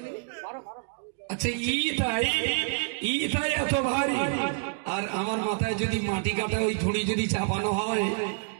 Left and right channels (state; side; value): silent; left; digital silence